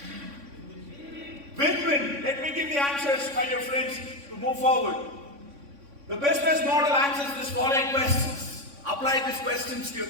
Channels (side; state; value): left; late; 3.6 ms